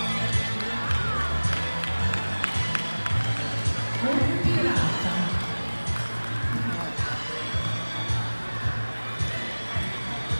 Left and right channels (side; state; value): both; inverted; correlation -1.00